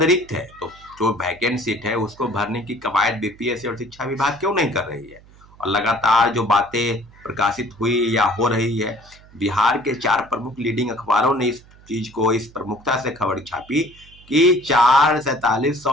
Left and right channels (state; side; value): noise; right; hum, 25 dB below the sound